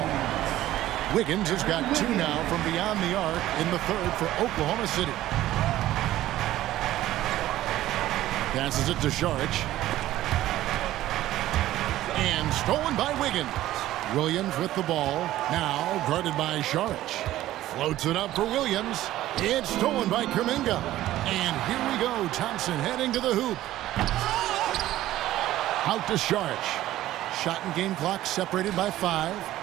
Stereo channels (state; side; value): quieter; left; 14.5 dB